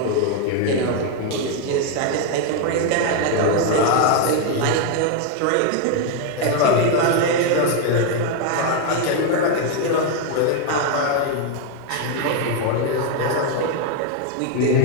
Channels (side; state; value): both; different; correlation 0.01